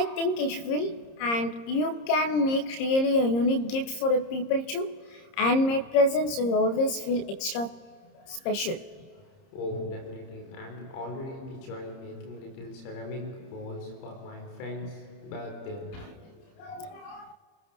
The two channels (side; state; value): right; late; 30 ms